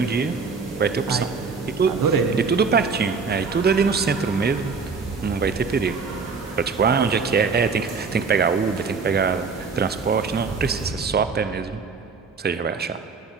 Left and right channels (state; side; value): quieter; left; 5.0 dB